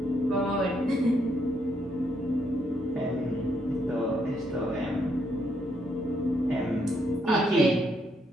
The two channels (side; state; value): both; normal; correlation 0.75